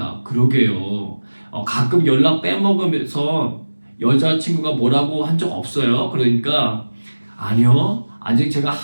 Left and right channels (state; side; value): inverted; both; correlation -1.00